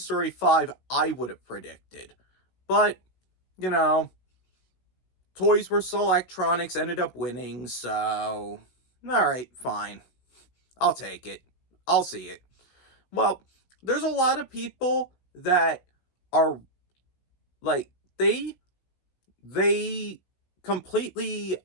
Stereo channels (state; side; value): late; right; 16 ms